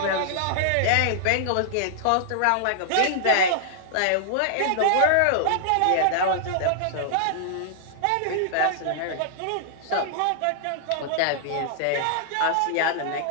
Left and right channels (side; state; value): both; different; correlation -0.01